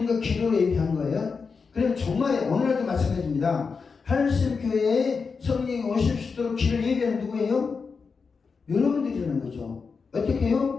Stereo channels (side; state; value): right; quieter; 5.1 dB